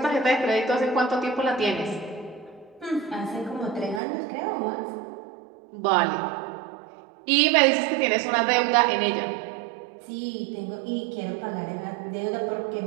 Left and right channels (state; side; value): drops out; left; at 4.0 s